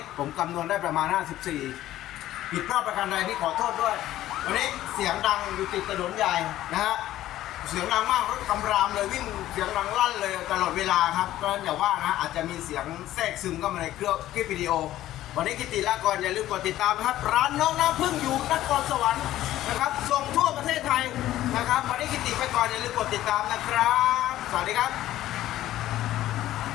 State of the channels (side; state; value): right; quieter; 14.0 dB